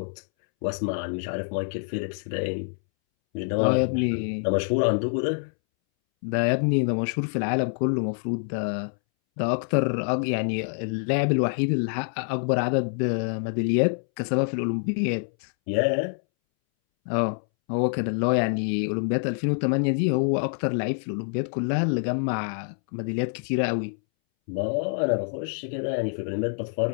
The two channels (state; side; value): silent; right; 61 dB below the other